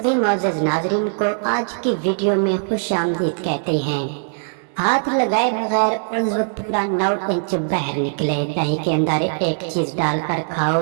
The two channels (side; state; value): left; silent; digital silence